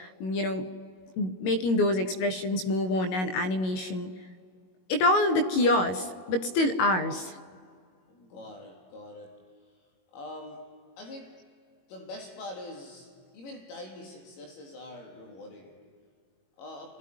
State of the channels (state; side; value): late; right; 22 ms